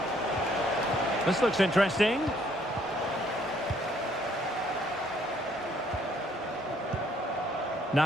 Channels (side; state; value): both; normal; correlation 0.66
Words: This looks interesting.